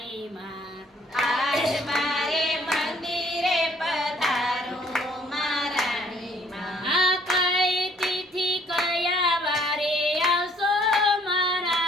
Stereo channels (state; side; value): normal; both; correlation 0.62